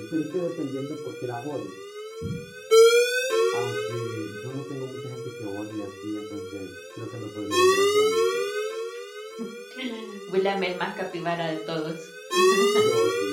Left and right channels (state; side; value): identical; both; correlation 1.00